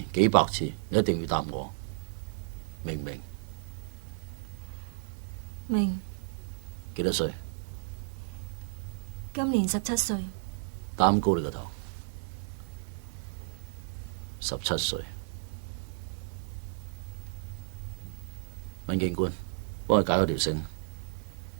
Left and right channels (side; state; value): left; silent; digital silence